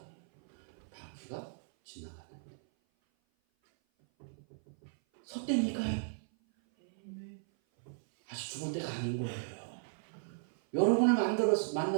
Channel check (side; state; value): left; silent; 54 dB below the other